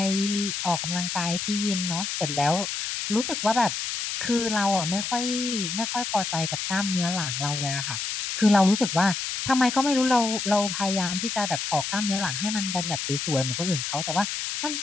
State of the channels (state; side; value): noise; left; hiss, 3 dB below the sound